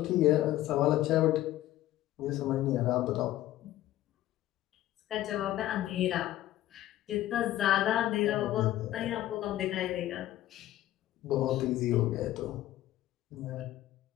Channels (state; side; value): quieter; right; 14.3 dB